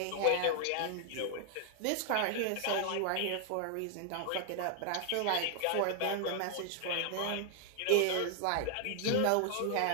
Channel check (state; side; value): different; both; correlation 0.00